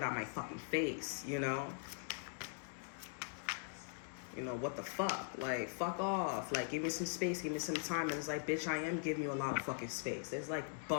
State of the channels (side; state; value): right; silent; digital silence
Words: out my fucking face, you know, what the fuck, like fuck off, like give me some space, give me some time. And it's like, bitch, I am giving you a lot of fucking space. There's like